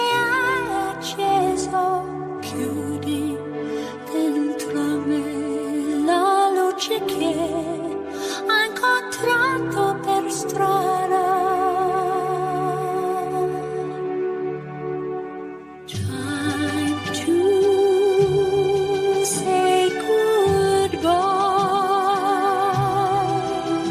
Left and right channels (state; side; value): identical; both; correlation 1.00